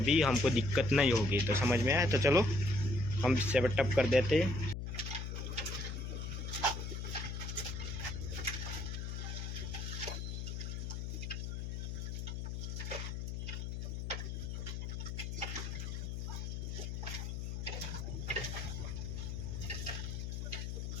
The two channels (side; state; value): left; noise; hum, 4 dB below the sound